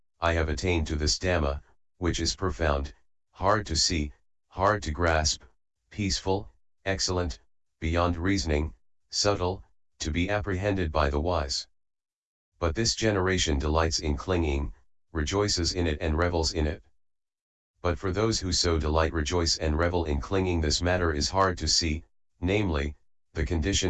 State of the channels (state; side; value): identical; both; correlation 1.00